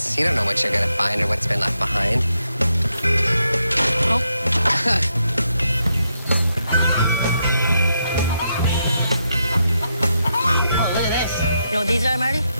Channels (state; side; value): inverted; both; correlation -0.81